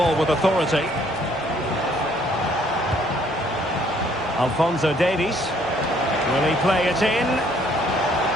with authority. Alphonso Davies. Will he play it in?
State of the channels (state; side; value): normal; both; correlation 0.63